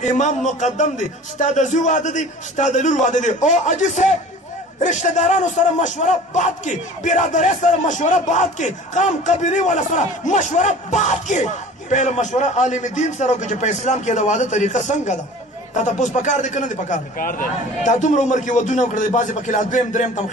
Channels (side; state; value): both; normal; correlation 0.43